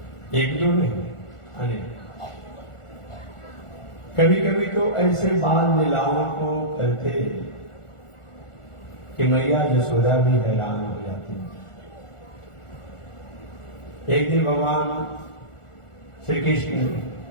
एक दो नहीं अनेक। कभी कभी तो ऐसे बाल लीलाओं को करते कि मैया यशोदा भी हैरान हो जाती। एक दिन भगवान श्री कृष्ण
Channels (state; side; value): late; right; 1.4 ms